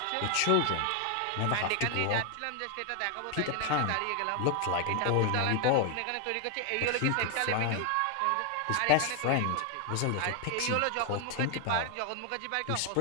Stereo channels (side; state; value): both; different; correlation 0.00